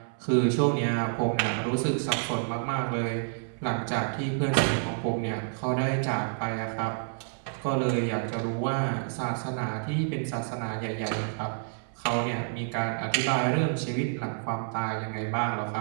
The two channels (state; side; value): silent; left; 59 dB below the other